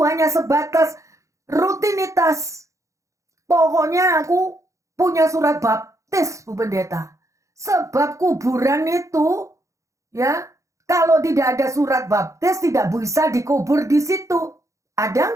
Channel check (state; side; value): late; left; 0.15 ms